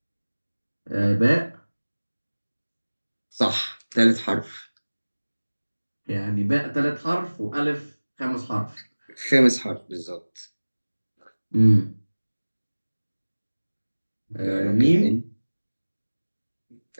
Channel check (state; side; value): inverted; both; correlation -1.00